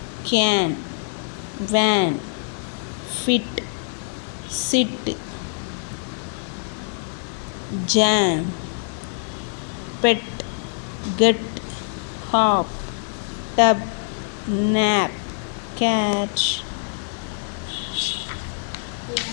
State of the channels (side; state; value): right; silent; digital silence